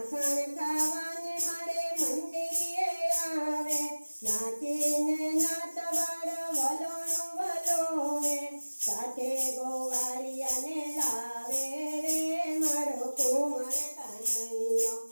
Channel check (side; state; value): both; inverted; correlation -1.00